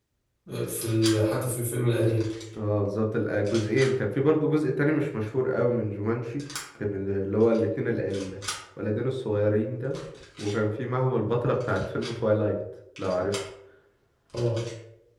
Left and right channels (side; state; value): both; identical; correlation 1.00